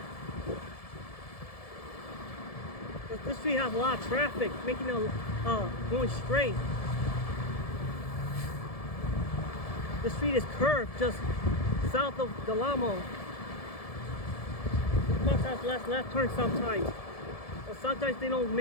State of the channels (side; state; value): right; late; 1.7 ms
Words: This street has a lot of traffic, making it going straight. The street is curved just south of Delamo. Cars have left turn sometimes. But sometimes they don't